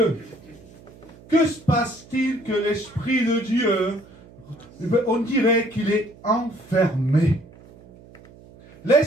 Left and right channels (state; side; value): noise; right; hum, 23 dB below the sound